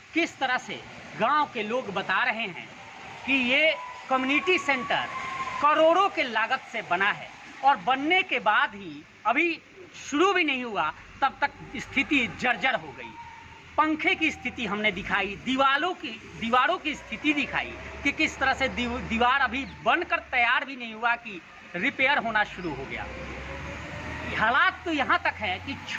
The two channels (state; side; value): identical; both; correlation 1.00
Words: किस तरह से गांव के लोग बता रहे हैं कि ये कम्युनिटी सेंटर करोड़ों के लागत से बना है और बनने के बाद ही अभी शुरू भी नहीं हुआ तब तक स्थिति जर्जर हो गई। पंखे की स्थिति हमने दिखाई, दीवारों की स्थिति दिखाई कि किस तरह से दीवार अभी बनकर तैयार भी नहीं हुआ कि रिपेयर होना शुरू हो गया। हालात तो यहाँ तक है कि